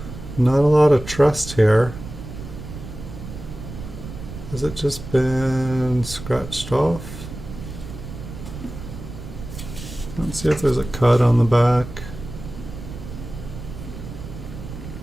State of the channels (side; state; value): right; noise; rumble, 11 dB below the sound